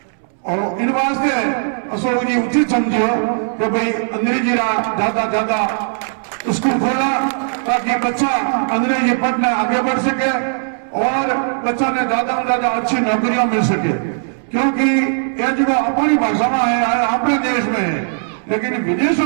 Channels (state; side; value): silent; left; 68 dB below the other